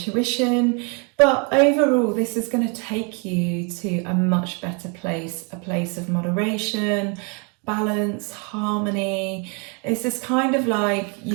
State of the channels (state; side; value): quieter; left; 34.8 dB